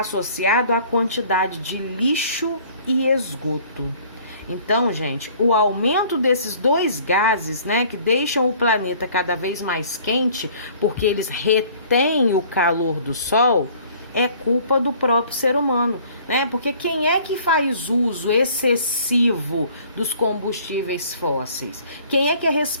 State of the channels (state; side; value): inverted; both; correlation -0.53